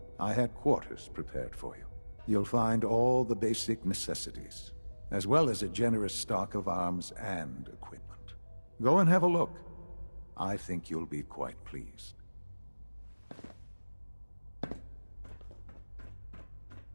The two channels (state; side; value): inverted; both; correlation -1.00